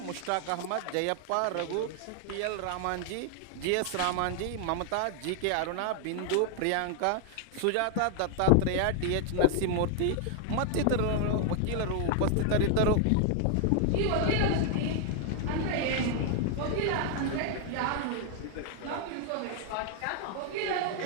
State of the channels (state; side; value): different; both; correlation 0.00